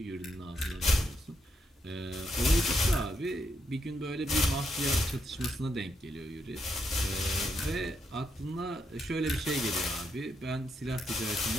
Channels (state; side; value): normal; both; correlation 0.79